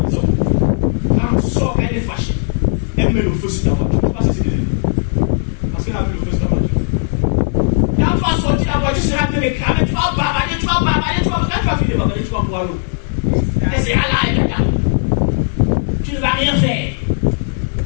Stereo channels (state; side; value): silent; right; 56 dB below the other